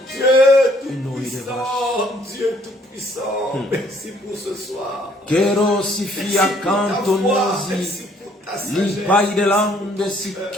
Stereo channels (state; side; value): normal; both; correlation 0.63